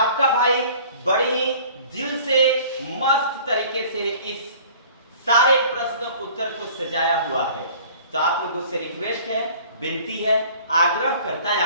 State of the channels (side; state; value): both; inverted; correlation -0.49